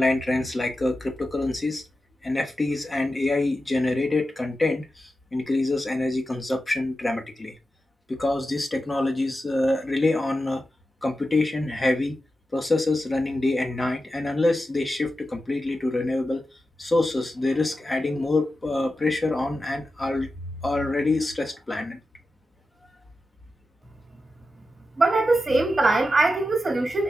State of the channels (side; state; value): both; normal; correlation 0.91